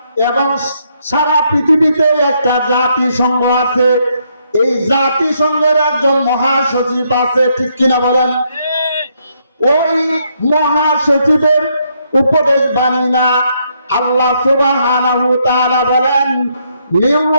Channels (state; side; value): inverted; both; correlation -0.74